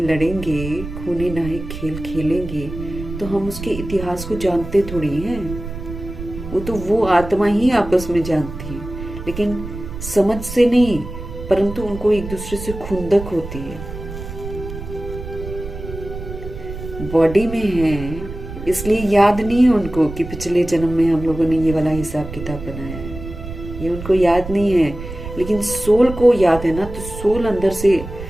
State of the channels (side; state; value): right; noise; rumble, 10 dB below the sound